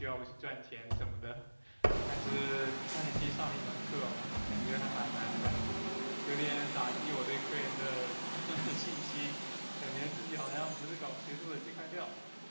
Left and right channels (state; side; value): inverted; both; correlation -1.00